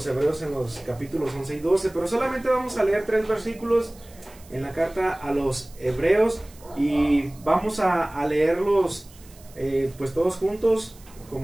Hebreos en los capítulos 11 y 12, pero solamente vamos a leer 3 versículos en la carta a los Hebreos y vamos a leerlos pues todos juntos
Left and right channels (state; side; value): noise; right; hiss, 24 dB below the sound